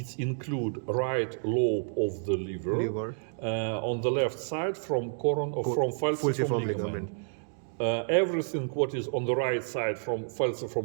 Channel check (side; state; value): left; silent; digital silence